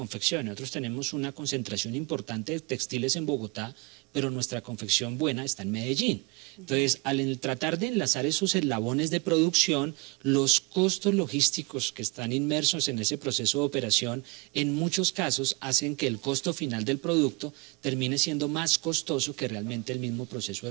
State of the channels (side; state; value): left; quieter; 28.1 dB